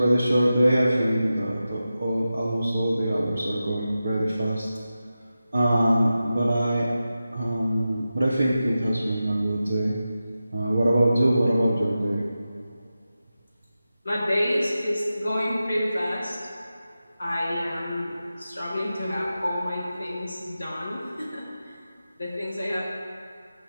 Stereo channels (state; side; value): inverted; both; correlation -0.93